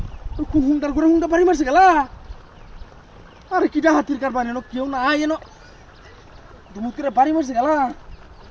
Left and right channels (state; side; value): identical; both; correlation 1.00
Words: হুন্ডার করে হুন্ডা বাড়ি মারছে গেলা আরে কিটা হাতির কারবার এনো কেউ না এনো দুমুত করে বাড়ি মারছে গেলা